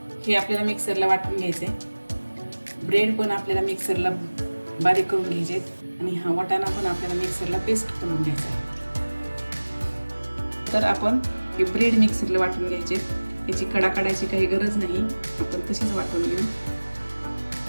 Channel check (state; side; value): inverted; both; correlation -1.00